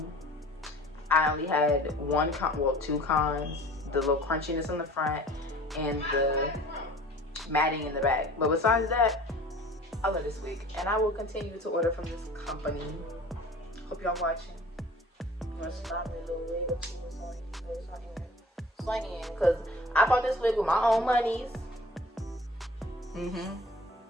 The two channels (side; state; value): both; normal; correlation 0.46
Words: I only had two cons, the little crunchiness in the front and the matting in the back. But besides that, I love this wig and I will continue to order from this company. Hope y'all watching. You want to stop me a little wig or two or something? Swing in, because I bought this wig with my own monies.